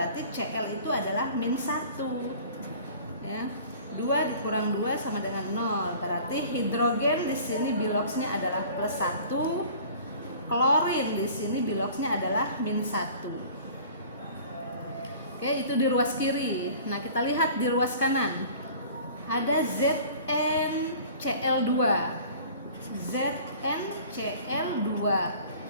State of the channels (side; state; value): both; inverted; correlation -0.46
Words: Cl itu adalah -1 ya. 2 dikurang 2 sama dengan 0, berarti hidrogen di sini biloksnya adalah +1, klorin di sini biloksnya adalah -1. Oke, itu di ruas kiri. Nah, kita lihat di ruas kanan. Ada ZnCl2. ZnCl2.